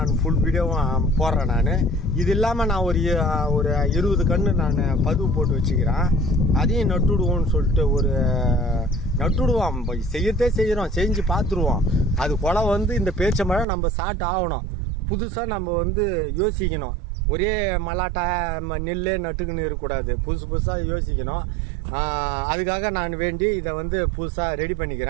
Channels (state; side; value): drops out; left; at 13.7 s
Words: ஃபுல் வீடியோவும் போடுறேன். நான் இது இல்லாமல் நான் ஒரு 20 கன்று நான் பதிவு போட்டு வச்சுக்கிறேன். அதையும் நட்டுடுவோம்னு சொல்லிட்டு நட்டுடுவோம். செய்யறதே செய்கிறோம், செஞ்சு பார்த்துருவோம். அது கொலை வந்து இந்த பேரிச்சம்பழம் நம்ம சாப்பிட்டு ஆகணும். புதுசாக நம்ம வந்து யோசிக்கணும். ஒரே மல்லாட்டை நெல்லே நட்டுக்குன்னு இருக்கக்கூடாது, புதுசாக யோசிக்கணும். அதுக்காக நான் வேண்டி இதை வந்து புதுசாக ரெடி